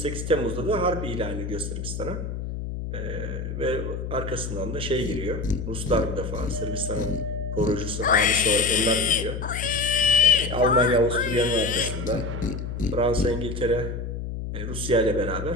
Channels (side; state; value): left; noise; hum, 6 dB below the sound